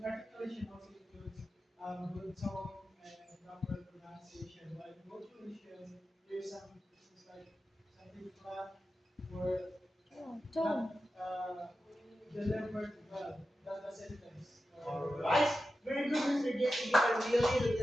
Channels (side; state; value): both; normal; correlation 0.92